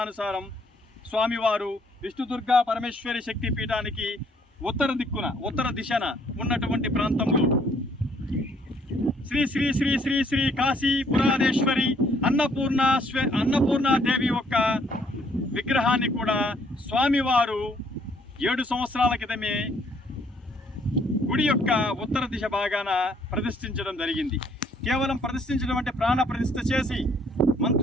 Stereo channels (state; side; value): normal; both; correlation 0.65